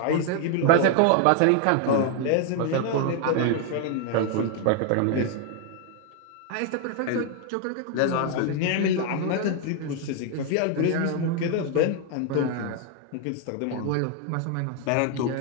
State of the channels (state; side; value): different; both; correlation 0.00